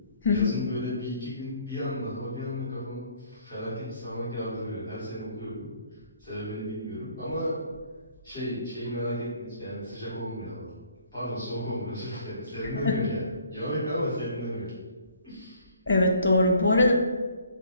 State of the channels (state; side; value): inverted; both; correlation -0.59